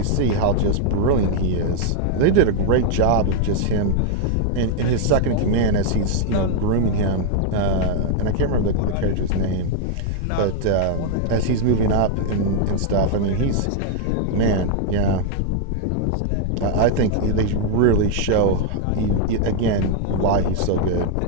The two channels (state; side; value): different; both; correlation 0.00